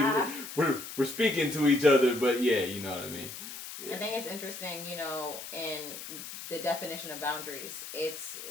We're speaking to each other, but you know what I mean. I think it's interesting, in the definition of boundaries. It's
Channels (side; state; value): left; noise; hiss, 10 dB below the sound